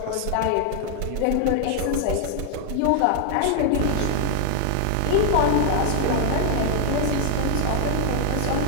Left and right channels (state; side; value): different; both; correlation 0.00